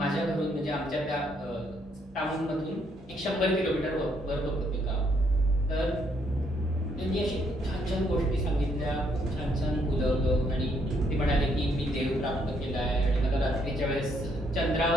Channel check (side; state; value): both; normal; correlation 0.71